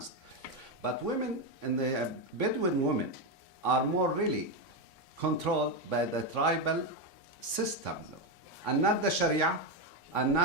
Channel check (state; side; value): late; right; 3.5 ms